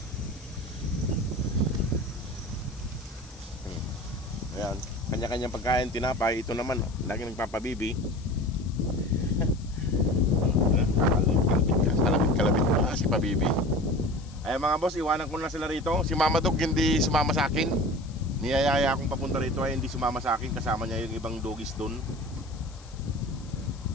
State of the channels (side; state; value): left; noise; hiss, 23 dB below the sound